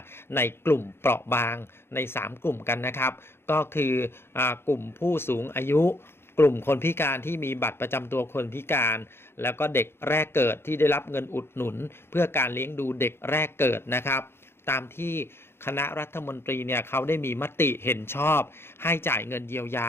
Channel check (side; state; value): right; late; 0.11 ms